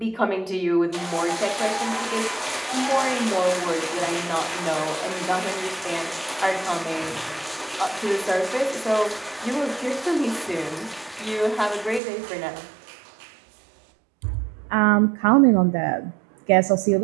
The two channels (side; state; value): left; drops out; at 12.0 s